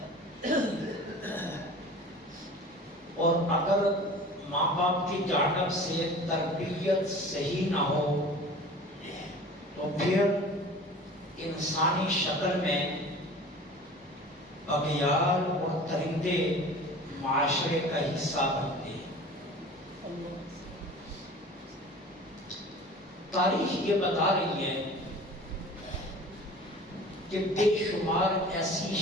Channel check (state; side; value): normal; both; correlation 0.41